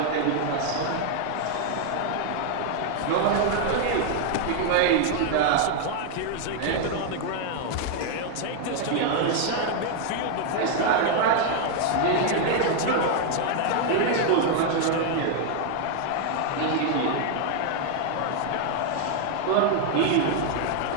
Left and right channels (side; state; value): both; different; correlation 0.00